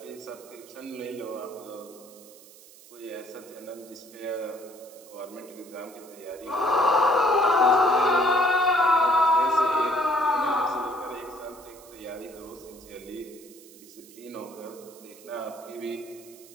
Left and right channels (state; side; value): noise; right; hiss, 21 dB below the sound